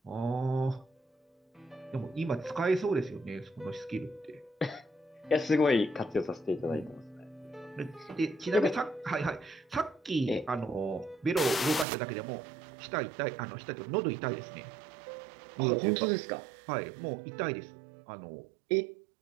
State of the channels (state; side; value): drops out; left; at 11.9 s